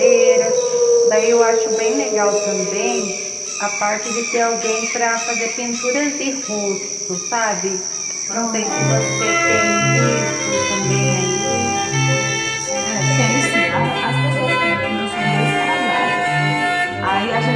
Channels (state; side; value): identical; both; correlation 1.00